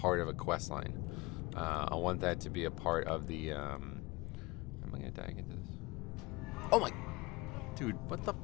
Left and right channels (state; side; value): quieter; right; 23.4 dB